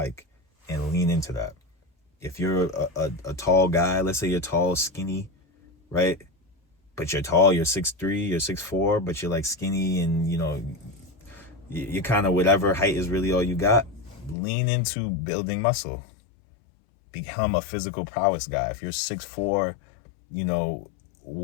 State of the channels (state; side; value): drops out; right; at 14.4 s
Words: and lean into that. If you're a tall guy, let's say you're tall, skinny, right? But you're tall, you're 6'3", you're 6'4", but you're like skinny and, you're kind of whatever height is really all you got. Lean into building muscle. Become a physical prowess guy. If you're 6'4",